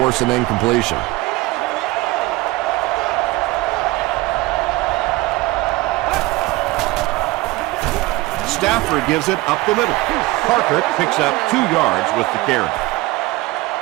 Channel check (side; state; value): left; quieter; 20.1 dB